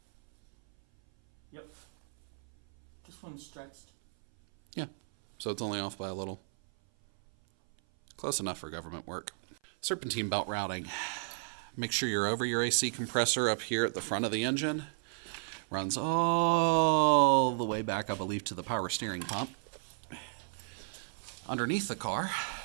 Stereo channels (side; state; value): left; silent; 56 dB below the other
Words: Yep. This one's stretched. Yeah. So it's only off by a little. Close enough for government work. Serpentine belt routing. Make sure you're over your AC compressor up here at the front of the engine. Runs all the way back, I believe, to the power steering pump. Underneath the car.